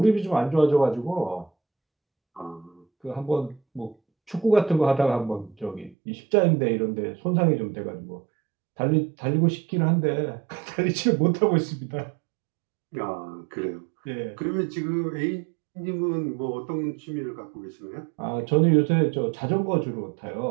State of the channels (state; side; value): drops out; left; at 6.0 s